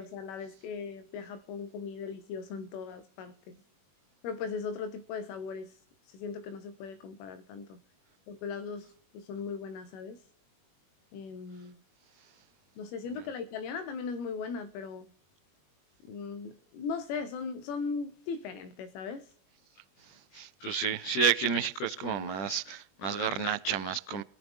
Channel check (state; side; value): late; right; 21 ms